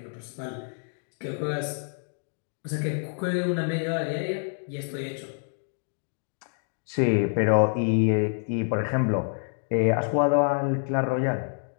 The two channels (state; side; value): silent; right; digital silence